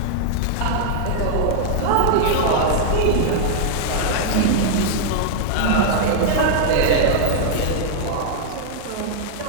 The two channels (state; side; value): different; both; correlation -0.01